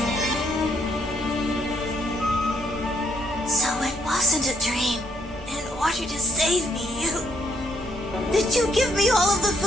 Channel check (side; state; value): both; normal; correlation 0.71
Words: So it wasn't a dream. In order to save me, did you give me all of the